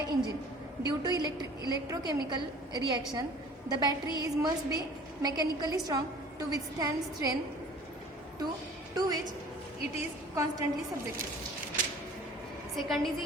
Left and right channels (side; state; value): both; normal; correlation 0.47